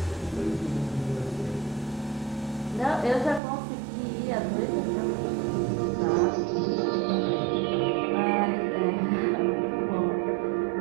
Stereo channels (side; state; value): left; drops out; at 3.4 s